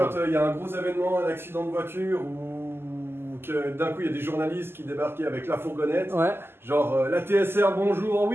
quand il y a un gros événement, un accident de voiture ou que d'un coup il y a des journalistes qui débarquaient avec la fourgonnette, genre la TSR bonjour,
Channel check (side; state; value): left; late; 0.11 ms